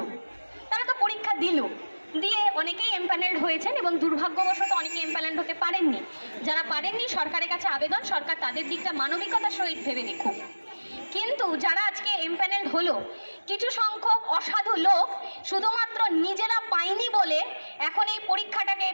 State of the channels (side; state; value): both; inverted; correlation -1.00